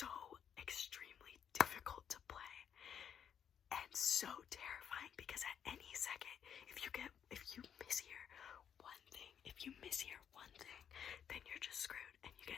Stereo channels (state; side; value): quieter; right; 8.4 dB